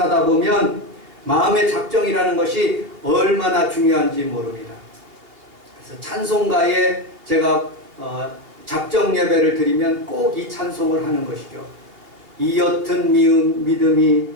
보면 마음의 작정이라는 것이 얼마나 중요한지 모릅니다. 그래서 찬송가에 제가 작정 예배를 드리면 꼭 이 찬송을 하는 것이죠. 이 옅은 믿음이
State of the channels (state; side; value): late; left; 2.9 ms